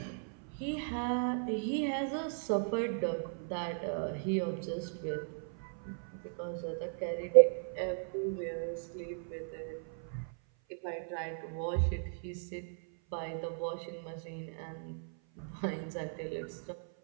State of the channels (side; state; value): left; silent; 53 dB below the other